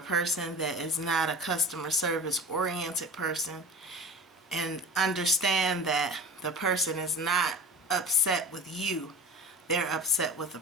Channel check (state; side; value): normal; both; correlation 0.34